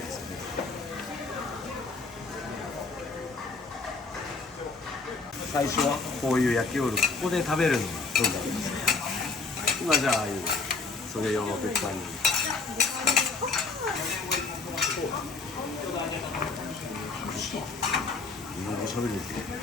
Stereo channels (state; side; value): quieter; right; 4.1 dB